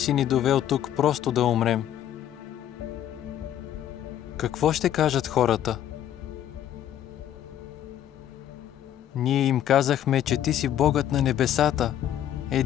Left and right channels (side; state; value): right; quieter; 11.2 dB